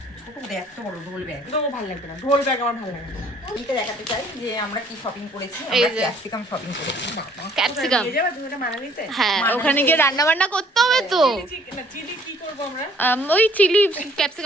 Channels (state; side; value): normal; both; correlation 0.59